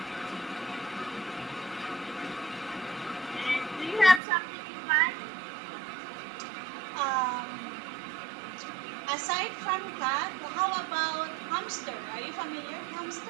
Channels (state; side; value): drops out; left; at 4.2 s